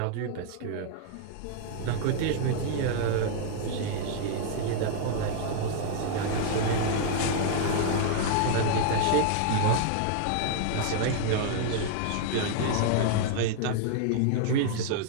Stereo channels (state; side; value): different; both; correlation -0.01